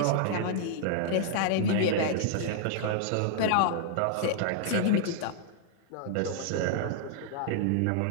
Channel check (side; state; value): both; different; correlation -0.01